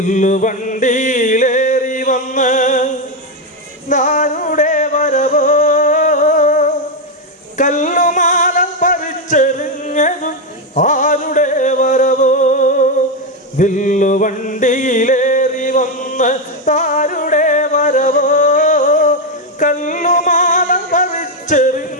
വന്ന് നാരുടെ വരവോ, കല്ലുമാല പറിച്ചെറിഞ്ഞതും ആരുടെ വരവോ. വില്ലുവണ്ടിയിലേറി വന്ന് താരുടെ വരവോ, കല്ലുമാല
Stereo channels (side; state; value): both; normal; correlation 0.06